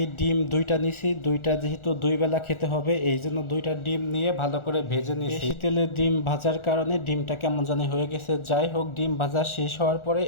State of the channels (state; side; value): late; right; 1.4 ms